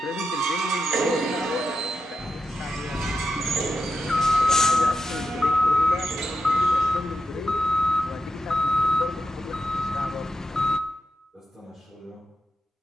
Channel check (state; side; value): normal; both; correlation 0.87